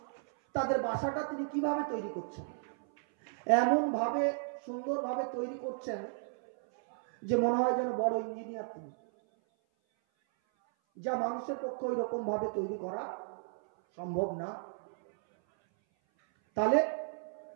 তাদের বাসাটা তিনি কিভাবে তৈরি করছেন। এমন ভাবে সুন্দরভাবে তৈরি করছেন যে মনে হয় যেন বড় ইঞ্জিনিয়ার তিনি, যা মানুষের পক্ষে ওই রকম ভাবে তৈরি করা সম্ভব না। তাহলে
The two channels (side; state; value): left; silent; 55 dB below the other